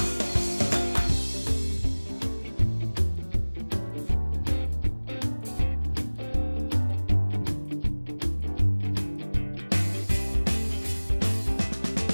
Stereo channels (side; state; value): both; inverted; correlation -1.00